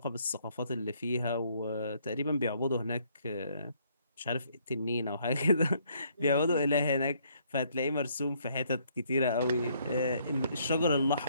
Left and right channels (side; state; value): both; inverted; correlation -0.67